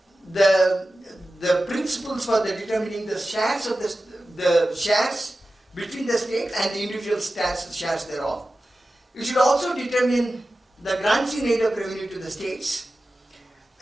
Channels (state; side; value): normal; both; correlation 0.94